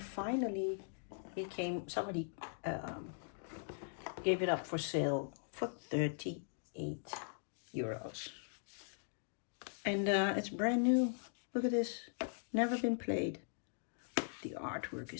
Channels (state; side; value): silent; right; digital silence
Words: somebody gave it up for sale for 38 euros. And it's brand new. Look at this. Never been played. The artwork